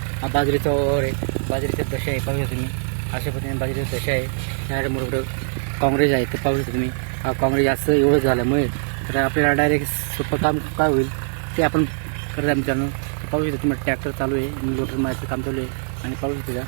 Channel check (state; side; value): silent; left; 63 dB below the other